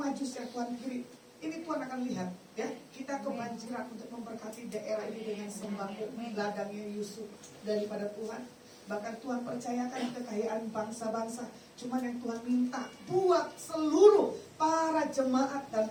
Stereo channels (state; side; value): identical; both; correlation 1.00